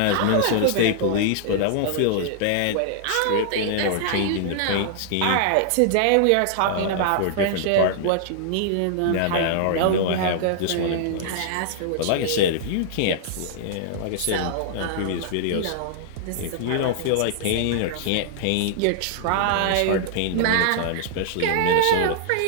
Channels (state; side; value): different; both; correlation -0.01